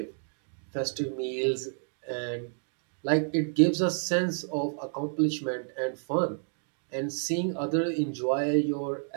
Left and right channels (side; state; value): left; silent; 58 dB below the other